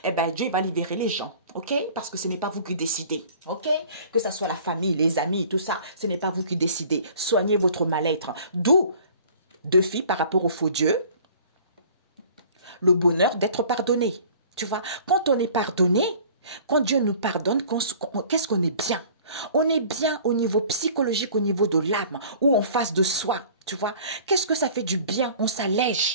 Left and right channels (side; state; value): both; inverted; correlation -0.49